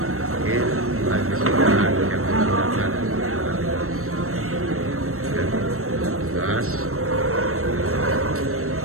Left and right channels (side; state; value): left; late; 0.63 ms